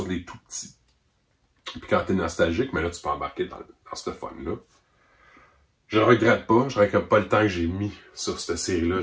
les tout petits. Puis quand t'es nostalgique, mais là, tu peux embarquer dans ce fun-là. Je ne regrette pas. Je ne regrette pas le temps que j'ai mis sur cette série-là.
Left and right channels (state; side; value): identical; both; correlation 1.00